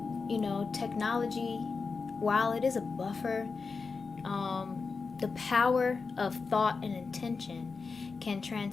Technology, while it is a buffer, the power of thought and intention can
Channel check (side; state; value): right; quieter; 4.6 dB